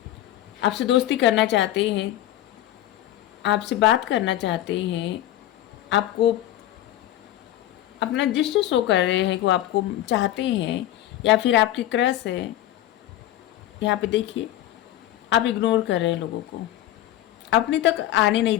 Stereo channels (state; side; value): quieter; right; 13.6 dB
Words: आपसे दोस्ती करना चाहते हैं, आपसे बात करना चाहते हैं, आपको अपना जस्ट शो कर रहे हैं कि वो आपको चाहते हैं, या फिर आपकी क्रश है। यहाँ पे देखिए, आप इग्नोर कर रहे हैं लोगों को, अपने तक आने नहीं